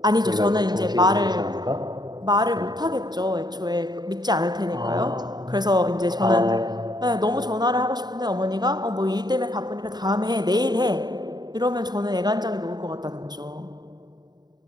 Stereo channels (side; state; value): left; late; 0.20 ms